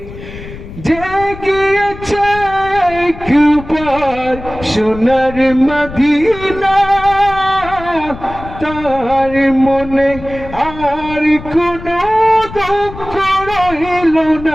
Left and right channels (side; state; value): left; noise; rumble, 14 dB below the sound